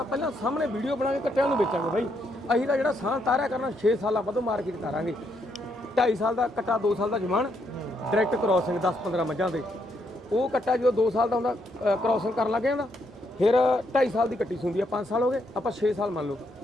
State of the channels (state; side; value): normal; both; correlation 0.76